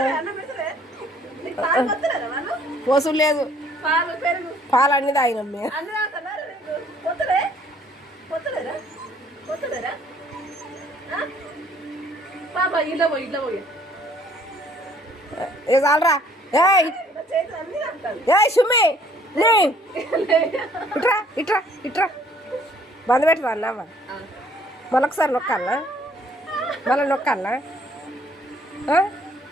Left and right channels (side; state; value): both; normal; correlation 0.60